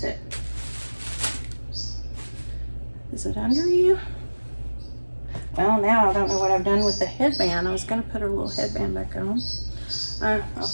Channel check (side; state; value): both; inverted; correlation -1.00